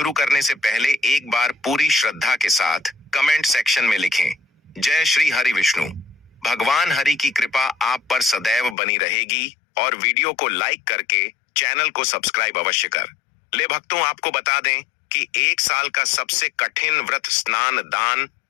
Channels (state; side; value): drops out; right; at 8.8 s